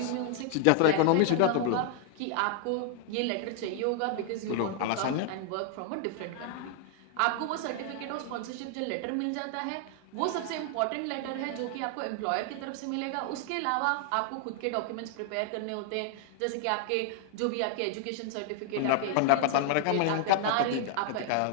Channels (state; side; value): different; both; correlation 0.00